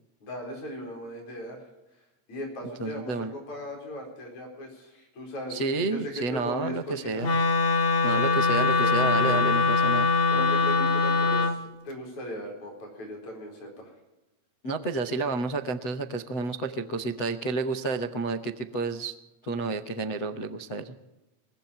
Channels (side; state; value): right; late; 8.1 ms